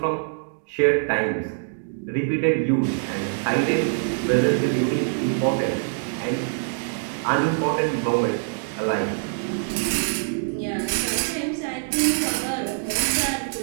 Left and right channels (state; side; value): silent; left; digital silence